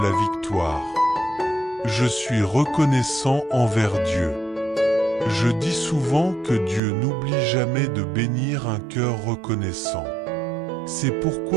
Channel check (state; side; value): drops out; left; at 6.8 s